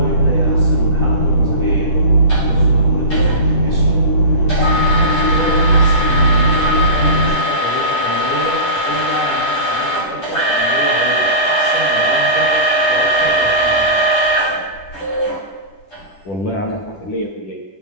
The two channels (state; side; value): late; right; 10 ms